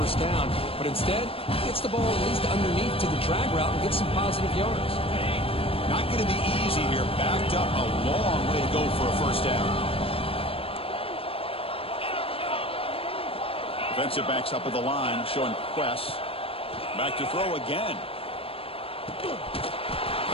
down. But instead, gets the ball at least underneath to the drag route and gets some positive yards. Not going to be easy here. Backed up a long way to go for a first down. Defensive backs up at the line, showing press. Back to throw again.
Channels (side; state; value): right; late; 0.27 ms